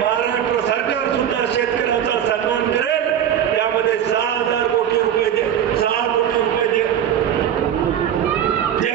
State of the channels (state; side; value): quieter; left; 9.7 dB